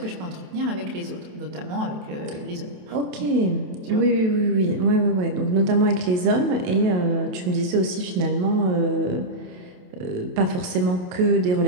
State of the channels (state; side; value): late; left; 27 ms